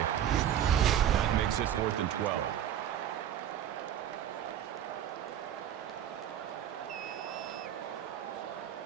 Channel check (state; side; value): quieter; left; 10.4 dB